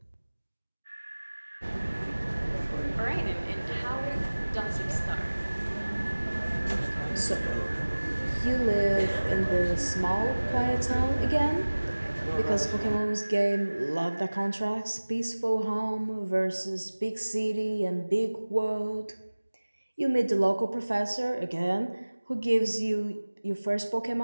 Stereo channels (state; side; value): inverted; both; correlation -1.00